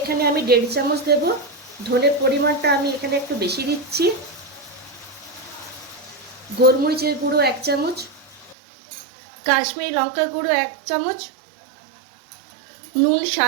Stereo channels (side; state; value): left; drops out; at 8.6 s